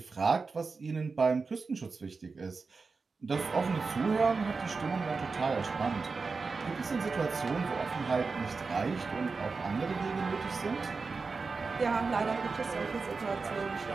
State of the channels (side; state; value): left; quieter; 4.4 dB